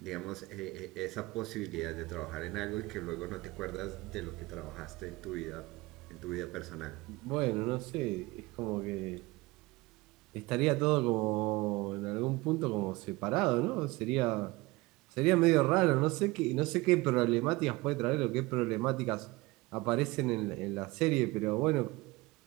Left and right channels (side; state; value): left; quieter; 21.9 dB